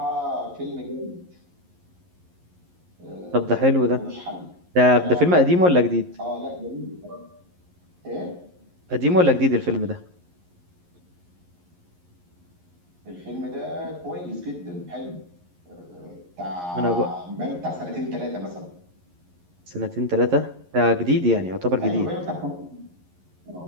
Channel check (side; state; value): left; late; 11 ms